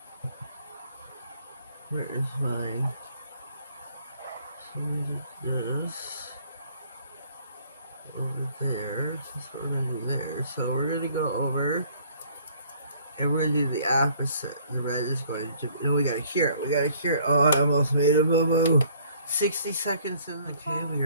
Where is my? So we did this over there. That's what we're gonna do there. So we're gonna go over And we're going to do the opposite. The red is going to... No, we got to cure it. We got to cure it. Oh, I almost made a boo-boo. 60 seconds in. Okay, we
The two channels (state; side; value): inverted; both; correlation -0.59